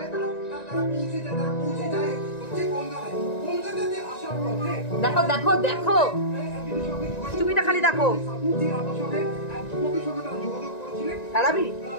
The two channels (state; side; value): late; right; 1.9 ms